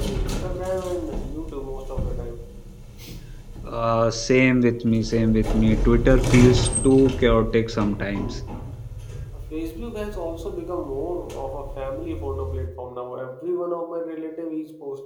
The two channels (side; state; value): both; identical; correlation 1.00